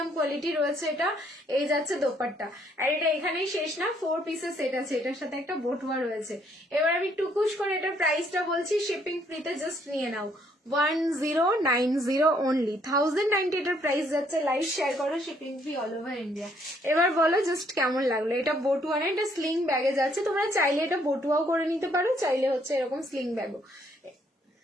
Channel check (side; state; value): both; normal; correlation 0.68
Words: কোয়ালিটি রয়েছে এটা। এই যাচ্ছে দোপাট্টা, আর এটা এখানেই শেষ না, 4 পিসের সেট আছে, এটার সাথে একটা বটুয়া রয়েছে। এবার আমি টুকুস করে এটার প্রাইসটা বলছি, শিপিং ফ্রিতে জাস্ট নিয়ে নাও 1090 অনলি, 1090 এটার প্রাইস যাচ্ছে। লাইভ শেয়ার করো, shipping free all over India. এবার বলো জাস্ট কেমন লাগলো। এটা বটুয়া না, এটা স্লিং ব্যাগে যাচ্ছে, তোমরা চাইলে এটা বটুয়াও করে নিতে পারো, চাইলে হচ্ছে এরকম স্লিং ব্যাগও।